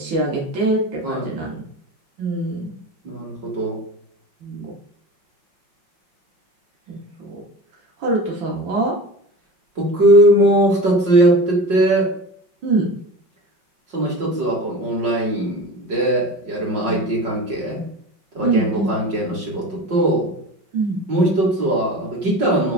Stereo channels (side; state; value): left; late; 5.5 ms